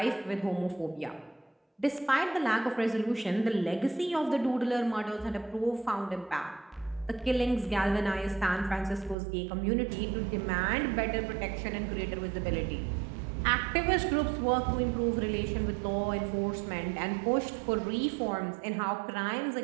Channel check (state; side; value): drops out; left; at 9.2 s